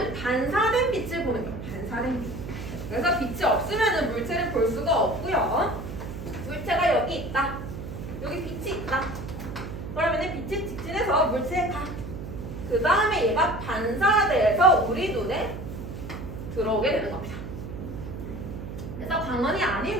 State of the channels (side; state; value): right; noise; hum, 9 dB below the sound